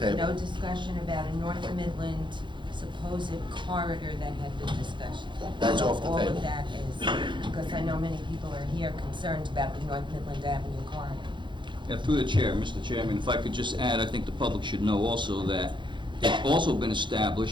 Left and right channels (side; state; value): left; late; 0.23 ms